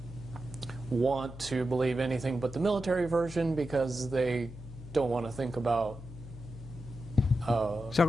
want to believe anything but the military version, because they don't want to think about Zal ik hem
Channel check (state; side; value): noise; left; hum, 14 dB below the sound